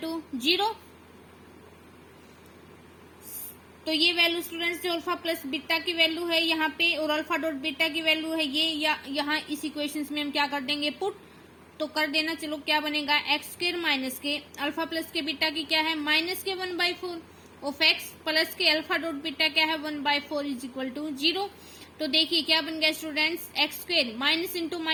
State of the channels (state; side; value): identical; both; correlation 1.00